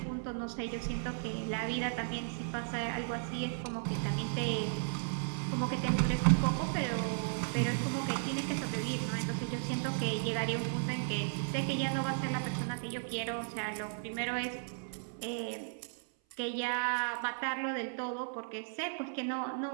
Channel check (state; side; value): silent; left; 54 dB below the other